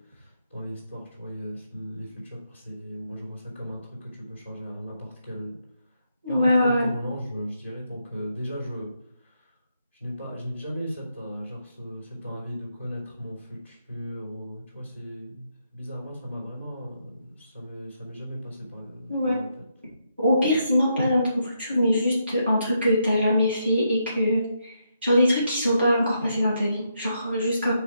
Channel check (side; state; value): both; inverted; correlation -0.79